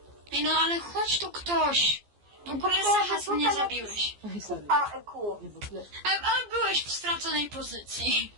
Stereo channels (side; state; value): left; late; 14 ms